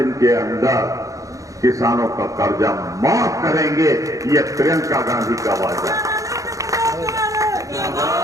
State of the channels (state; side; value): late; left; 0.16 ms